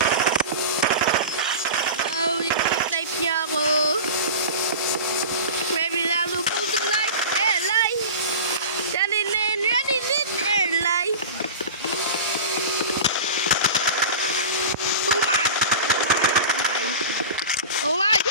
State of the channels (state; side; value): inverted; both; correlation -0.31